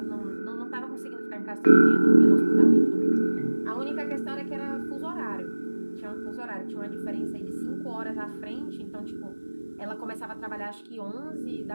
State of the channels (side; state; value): both; inverted; correlation -1.00